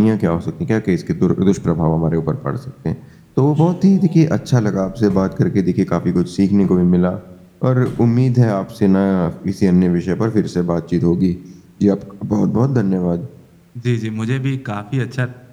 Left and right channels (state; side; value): identical; both; correlation 1.00